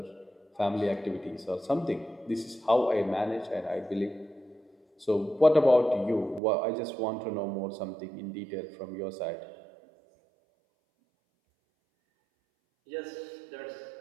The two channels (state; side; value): drops out; left; at 6.4 s